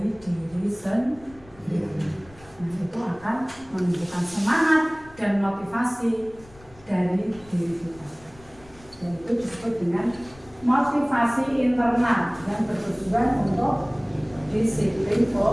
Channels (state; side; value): noise; left; rumble, 24 dB below the sound